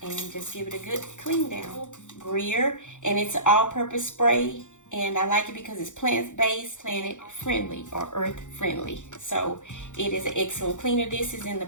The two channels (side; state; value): right; late; 0.85 ms